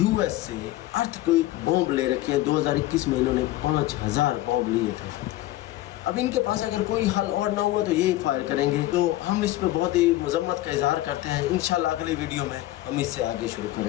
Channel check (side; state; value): right; quieter; 16.0 dB